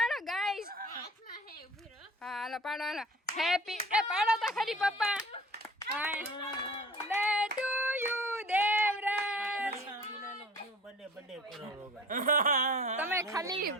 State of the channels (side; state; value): both; normal; correlation 0.44